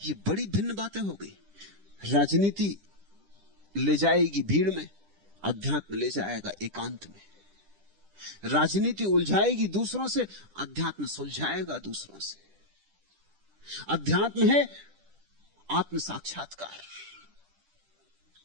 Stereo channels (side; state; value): left; late; 10 ms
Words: बड़ी भिन्न बातें हो गई। राजनीति ले जाएगी भीड़ में, अध्यात्म ले जाएगा एकांत में। राजनीति उलझाएगी दूसरों से, अध्यात्म सुलझाएगा दूसरों से। अध्यात्म है आत्म साक्षात्कार।